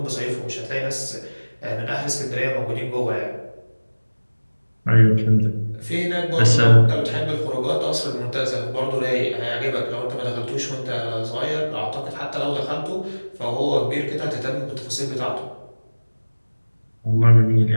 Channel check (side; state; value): both; inverted; correlation -1.00